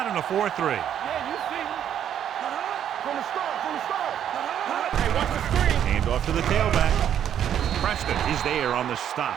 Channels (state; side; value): quieter; left; 9.8 dB